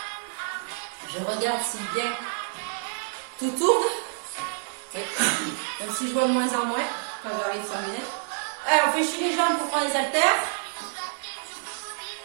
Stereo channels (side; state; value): left; silent; digital silence